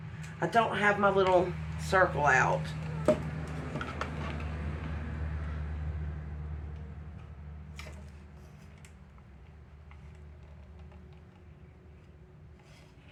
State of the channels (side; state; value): both; identical; correlation 1.00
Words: I don't have my little circle out.